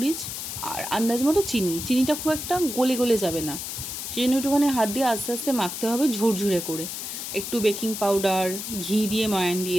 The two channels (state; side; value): noise; left; hiss, 6 dB below the sound